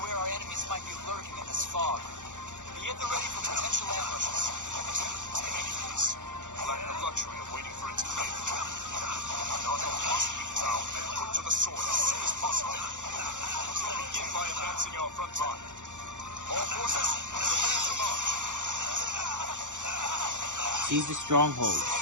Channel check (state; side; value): late; left; 0.86 ms